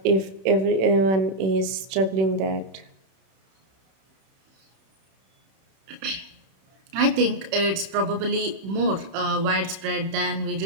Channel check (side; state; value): left; late; 31 ms